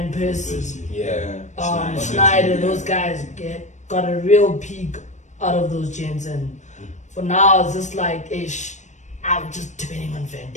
Persie, Yeah. Schneider, those guys got a real peak out of those gents, and for now it's just like I'm just depending on Van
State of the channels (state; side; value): late; right; 0.34 ms